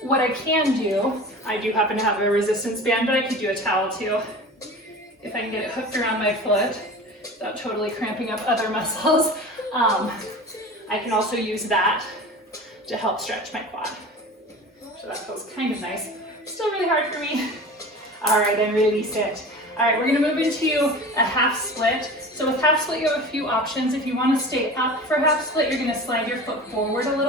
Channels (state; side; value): normal; both; correlation 0.36